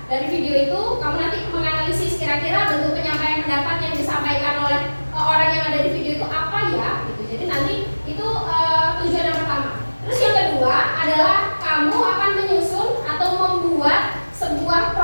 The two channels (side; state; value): both; inverted; correlation -1.00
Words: Dari video itu kamu nanti menganalisis kira-kira bentuk penyampaian pendapat yang disampaikan oleh orang yang ada di video itu apa ya, gitu. Jadi nanti itu tujuan yang pertama. Terus yang kedua adalah kamu akan menyusun atau membuat sebuah